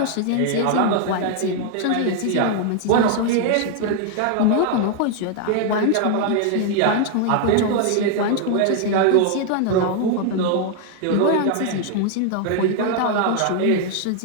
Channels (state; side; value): different; both; correlation 0.00